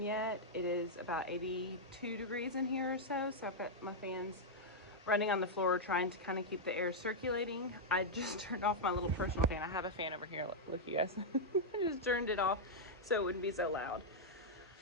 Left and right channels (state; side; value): normal; both; correlation -0.05